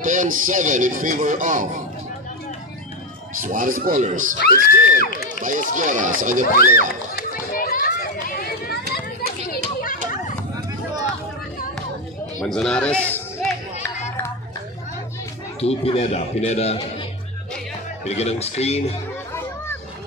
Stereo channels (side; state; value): both; normal; correlation 0.12